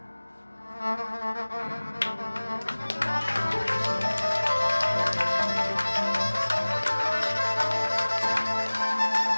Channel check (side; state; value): both; inverted; correlation -1.00